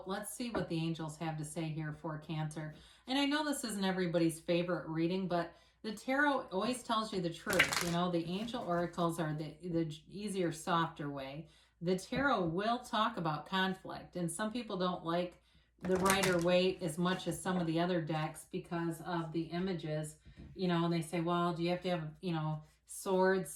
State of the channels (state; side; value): identical; both; correlation 1.00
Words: let's see what the angels have to say here for Cancer. And I know this isn't everybody's favorite reading, but the tarot always tells you the truth. You know, the angel oracles are the easier, softer way. The tarot will talk about conflict, and some people don't like the Rider-Waite as much as some of the other decks because of the images. You know, and they say, well, do you have to have, you know, swords